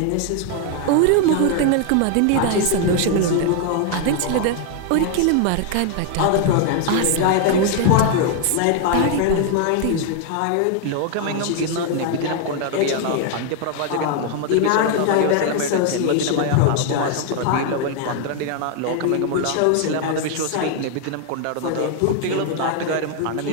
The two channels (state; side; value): different; both; correlation 0.00